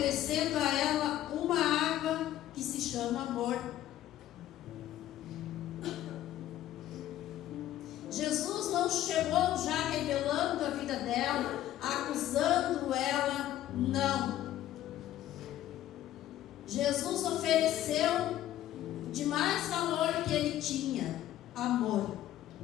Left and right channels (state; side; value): quieter; right; 13.0 dB